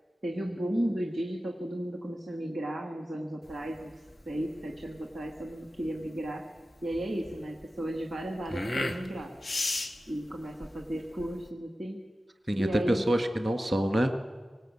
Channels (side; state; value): both; normal; correlation 0.94